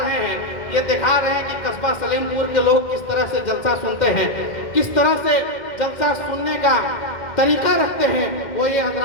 رہے ہیں، یہ دکھا رہے ہیں کہ قصبہ سلیم پور کے لوگ کس طرح سے جلسہ سنتے ہیں، کس طرح سے جلسہ سننے کا طریقہ رکھتے ہیں۔ وہ یہ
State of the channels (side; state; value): right; late; 2.1 ms